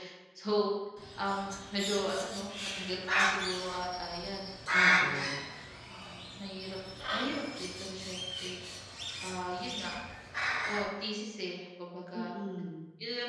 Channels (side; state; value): both; identical; correlation 1.00